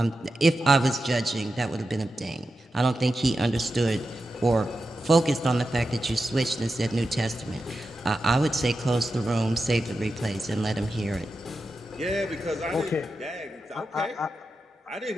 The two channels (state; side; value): normal; both; correlation 0.90